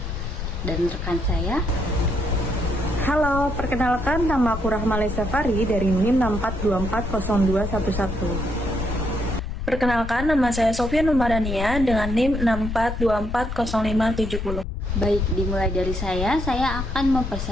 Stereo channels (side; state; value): left; noise; rumble, 5 dB below the sound